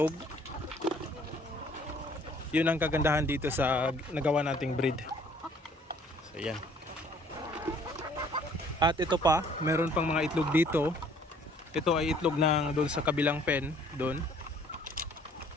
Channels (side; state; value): both; normal; correlation 0.58